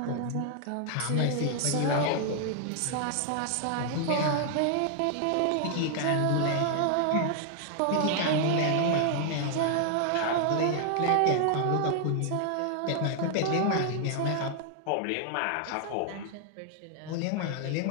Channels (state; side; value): different; both; correlation -0.01